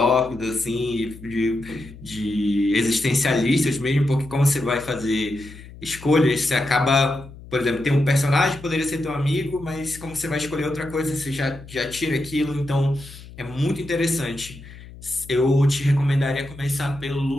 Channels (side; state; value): left; noise; hum, 17 dB below the sound